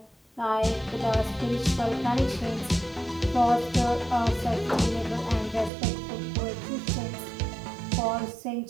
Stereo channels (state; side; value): drops out; left; at 5.7 s